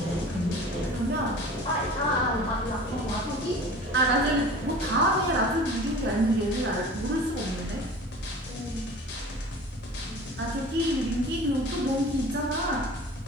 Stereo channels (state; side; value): normal; both; correlation 0.40